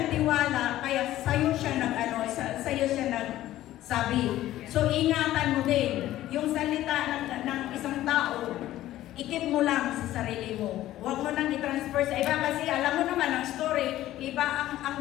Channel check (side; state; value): right; quieter; 14.3 dB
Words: kaya sa'yo siya nagsabi. So, ingatan mo din. Yung salita ng isang tao, ikip mo lang sa sarili mo. Huwag mo nang i-transfer sa iba kasi alam mo naman ang story, iba